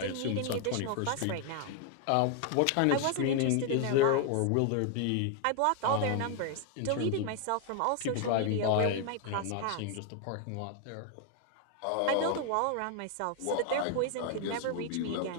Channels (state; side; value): different; both; correlation 0.00